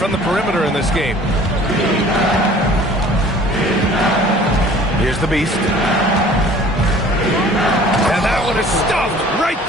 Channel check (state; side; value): normal; both; correlation 0.50